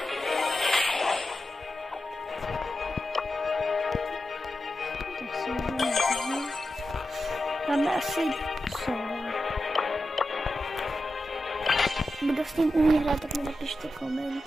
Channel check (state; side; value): normal; both; correlation 0.91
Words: Tak si můžeme. Máme asi solo. Kdo s ním umí hrát, tak mi napište